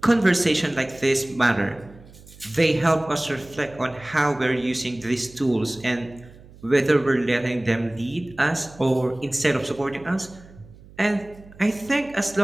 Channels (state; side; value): noise; right; hum, 22 dB below the sound